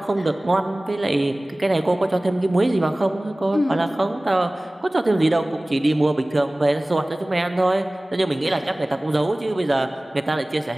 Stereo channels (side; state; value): both; normal; correlation 0.98